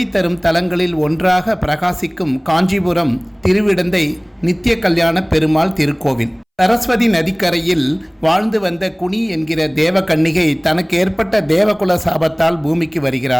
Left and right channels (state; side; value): identical; both; correlation 1.00